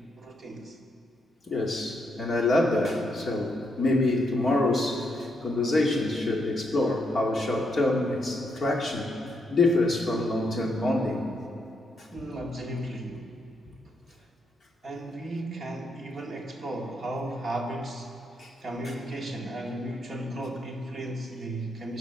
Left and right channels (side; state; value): both; normal; correlation 0.78